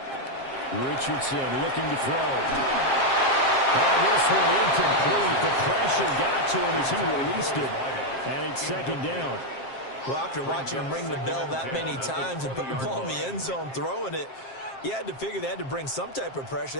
Richardson looking to throw. Oh, this one incomplete. The pressure got to him as he released it, and it's second down. Well, after watching him ring the bell that many times and put the ball in the end zone throwing it, you had to figure they had to bring some type of pressure.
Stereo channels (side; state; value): right; late; 7.5 ms